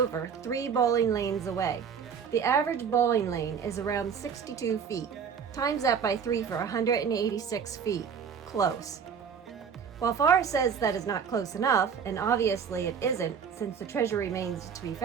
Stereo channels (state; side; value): quieter; left; 6.9 dB